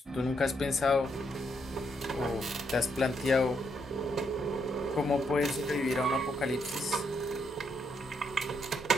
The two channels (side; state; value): both; normal; correlation 0.77